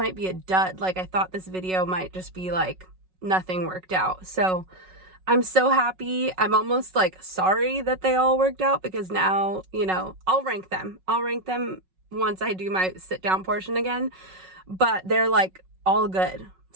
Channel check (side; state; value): left; late; 5.4 ms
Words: be a dud. Like I thought this video might just be like nothing worked out. So I'm so happy. I'm almost like sorry that they all worked out, because now, you know, I'll rank them once I do my sit down portion again, but they're like all good.